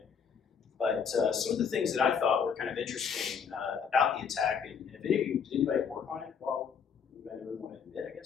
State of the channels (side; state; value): right; quieter; 6.7 dB